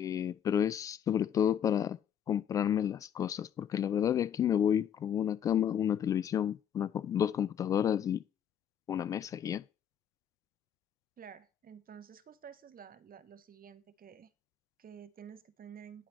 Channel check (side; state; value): right; quieter; 9.0 dB